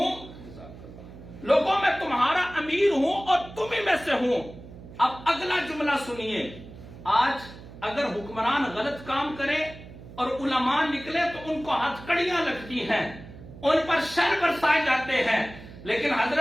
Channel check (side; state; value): right; noise; hum, 16 dB below the sound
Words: لوگوں میں تمہارا امیر ہوں اور تم ہی میں سے ہوں۔ اب اگلا جملہ سنیے۔ آج اگر حکمران غلط کام کرے اور علماء نکلے تو ان کو ہتھکڑیاں لگتی ہیں، ان پر شر برسائے جاتے ہیں، لیکن